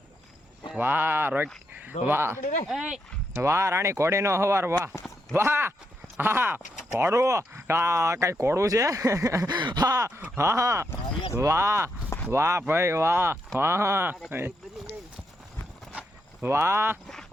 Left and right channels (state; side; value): normal; both; correlation 0.81